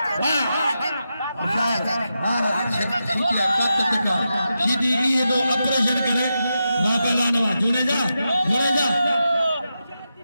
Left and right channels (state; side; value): inverted; both; correlation -0.88